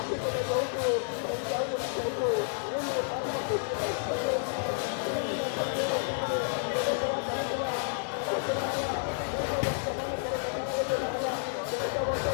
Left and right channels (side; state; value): right; silent; digital silence